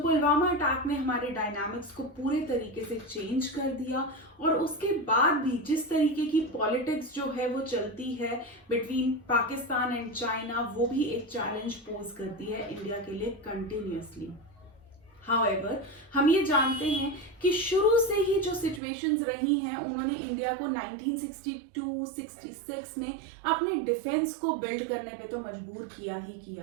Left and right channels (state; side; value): drops out; left; at 18.8 s